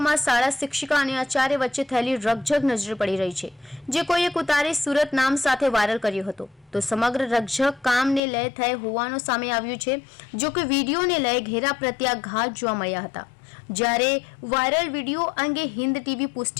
શાળા શિક્ષિકા અને આચાર્ય વચ્ચે થયેલી રકઝક નજરે પડી રહી છે, જે કોઈએ ઉતારી સુરત નામ સાથે વાયરલ કર્યો હતો। તો સમગ્ર રકઝક કામને લઈ થઈ હોવાનું સામે આવ્યું છે। જો કે વિડીયોને લઈ ઘેરા પ્રત્યાઘાત જોવા મળ્યા હતા, જ્યારે વાયરલ વિડીયો અંગે હિન્દ ટીવી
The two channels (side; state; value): right; drops out; at 8.2 s